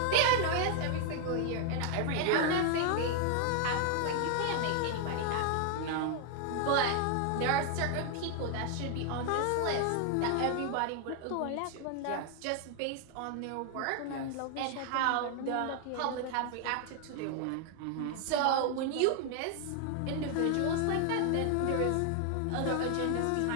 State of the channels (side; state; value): both; different; correlation 0.00